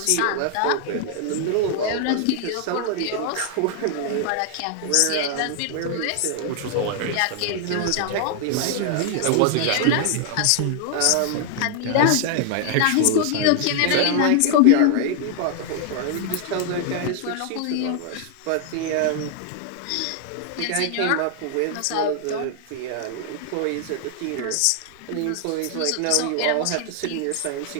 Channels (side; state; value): both; different; correlation 0.00